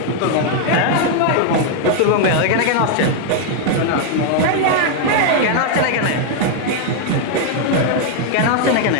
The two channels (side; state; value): both; different; correlation 0.00